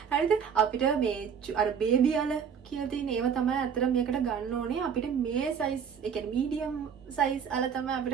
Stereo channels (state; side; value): quieter; left; 7.2 dB